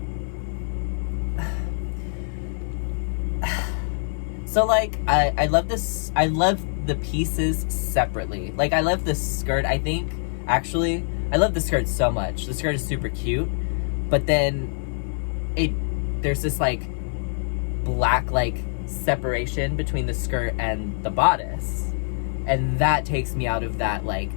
so, like, I love this. I love the pieces separately. Like, I love the skirt, I think. Actually, I love the skirt so much. The skirt is super cute. But then, there's this, like, black, like, separation between the skirt and the bodice. And that takes me out of that, like,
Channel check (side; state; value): right; silent; 62 dB below the other